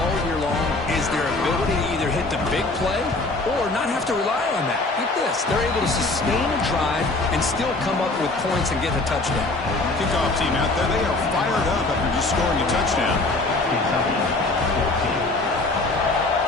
year long is their ability to either hit the big play or not have to rely on that. Get this. They're able to sustain a drive and still come up with points and get a touchdown. Kickoff team out there, they are fired up after just scoring a touchdown.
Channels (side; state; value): right; quieter; 3.1 dB